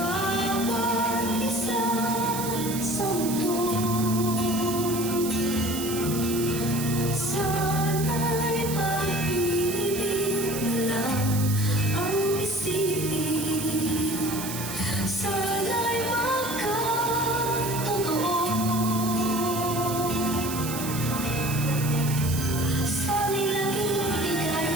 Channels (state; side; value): noise; right; hiss, 7 dB below the sound